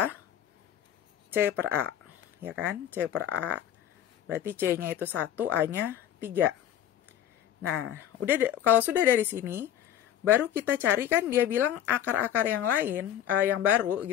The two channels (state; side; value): quieter; right; 10.4 dB